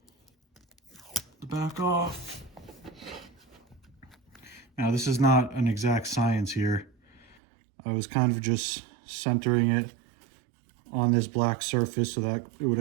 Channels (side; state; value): left; drops out; at 7.4 s